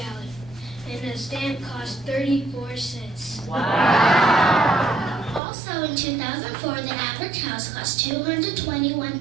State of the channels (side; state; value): left; drops out; at 5.4 s